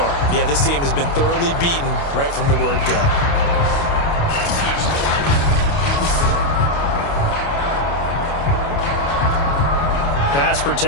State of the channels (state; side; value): late; right; 29 ms